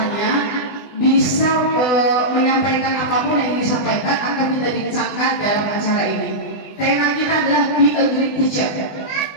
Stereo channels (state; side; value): late; right; 20 ms